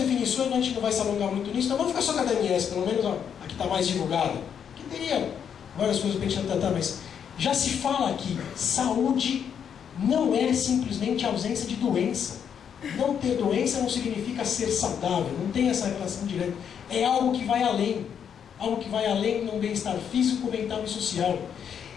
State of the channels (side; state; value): right; quieter; 8.0 dB